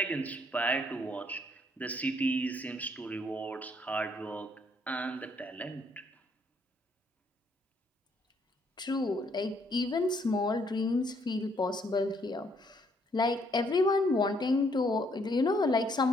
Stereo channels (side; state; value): both; normal; correlation 0.68